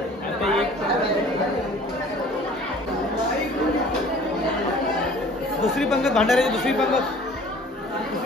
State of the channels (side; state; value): both; normal; correlation 0.49